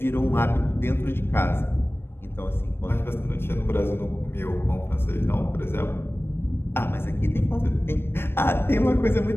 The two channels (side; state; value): right; late; 0.11 ms